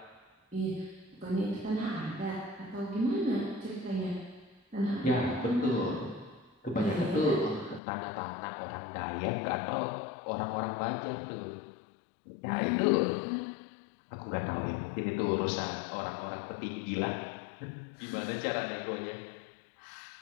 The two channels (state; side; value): drops out; right; at 7.8 s